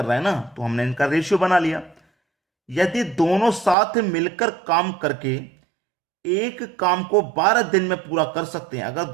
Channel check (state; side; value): drops out; left; at 3.8 s